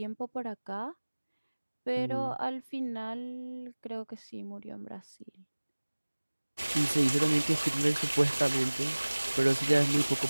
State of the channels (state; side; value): inverted; both; correlation -1.00